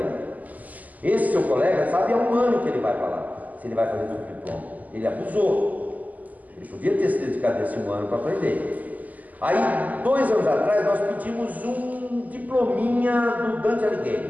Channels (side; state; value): left; late; 0.079 ms